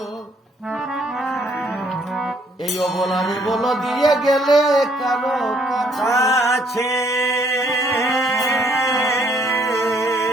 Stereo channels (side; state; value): both; normal; correlation 0.66